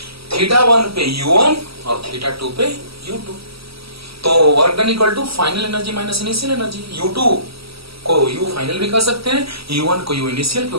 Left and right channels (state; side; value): late; left; 0.76 ms